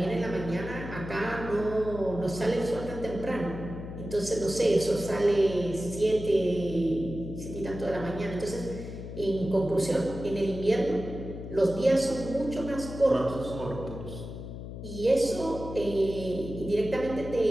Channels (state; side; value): noise; left; hum, 9 dB below the sound